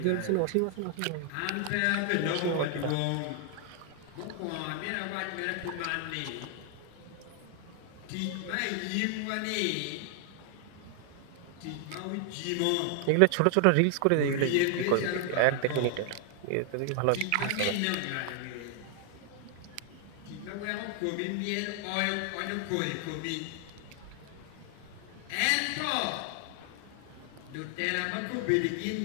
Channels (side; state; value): both; different; correlation 0.00